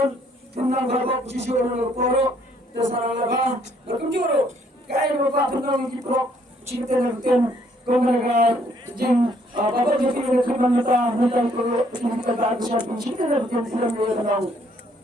tentang kapal posisi orang poro, terserah laba, berkunjung, kaya bapak tentang kita cerita tentang kemudian jeng bapak jadi kerana kita kita tak bisa cerita tentang film yang tentang,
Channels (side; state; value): both; normal; correlation 0.66